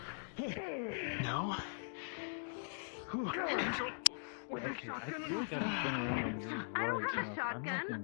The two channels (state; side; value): silent; right; digital silence